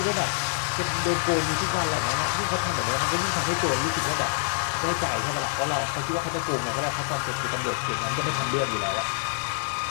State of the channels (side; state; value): right; silent; digital silence